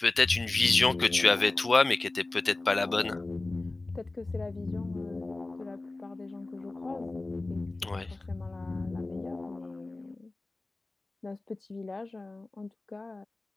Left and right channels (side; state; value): right; quieter; 3.1 dB